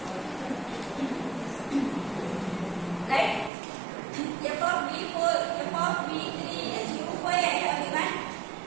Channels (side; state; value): left; drops out; at 3.5 s